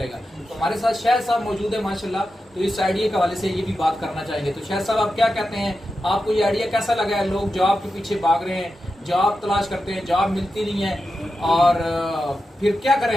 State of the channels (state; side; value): normal; both; correlation 0.90